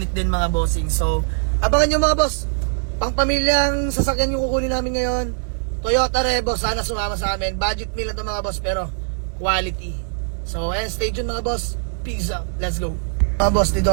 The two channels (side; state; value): left; silent; 65 dB below the other